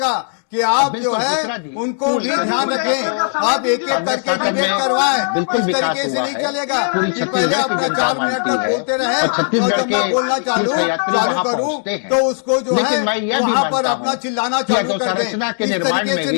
कि आप जो है उनको भी ध्यान रखें। आप एक एक करके डिबेट करवाएं, बिल्कुल इस विकास तरीके से हुआ नहीं है। चलेगा पूरी कि छत्तीसगढ़ पहले की आपका जनता 4 मिनट मानती तक है बोलते रहे और छत्तीसगढ़ और जब मैं के बोलना चालू तीर्थयात्री वहां करूं पहुंचते हैं। तो उसको जो लेकिन है मैं यह भी वहां पर मानता अपना हूं चिल्लाना कि चालू कर दें। अधोसंरचना के इस निर्माण तरीके में से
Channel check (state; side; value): silent; right; digital silence